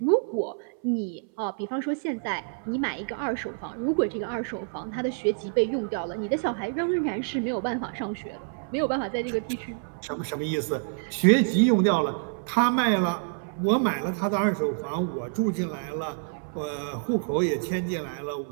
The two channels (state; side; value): silent; left; 60 dB below the other